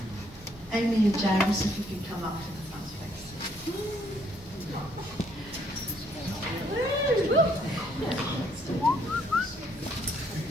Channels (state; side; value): normal; both; correlation 0.68